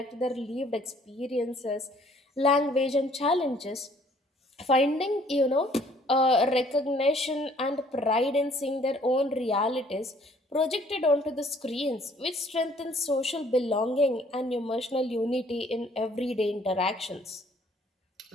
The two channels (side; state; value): both; normal; correlation 0.60